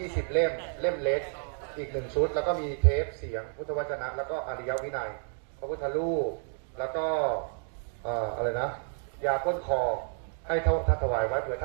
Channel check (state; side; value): silent; left; 57 dB below the other